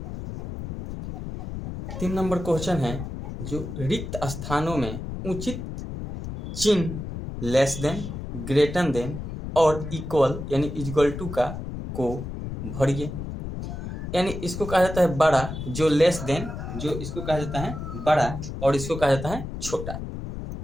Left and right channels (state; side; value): noise; left; rumble, 7 dB below the sound